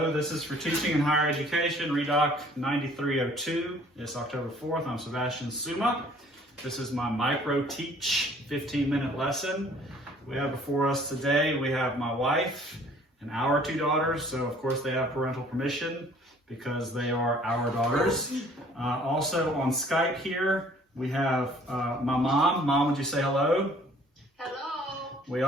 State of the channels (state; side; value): normal; both; correlation 0.56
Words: this is for teaching in higher education, Redoc 9302. It's October 4th. I'm Sebastian Suma. This is my micro teach 15-minute lesson. We have before us today, we have my wife and our two daughters. So of course they have parental permission because they are our daughters. Also on Skype here, we have my mom. Mom, would you say hello? Hello. We